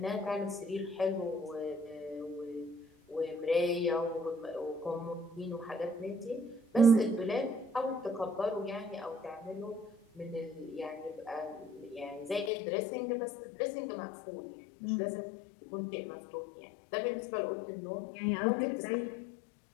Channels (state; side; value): drops out; right; at 12.5 s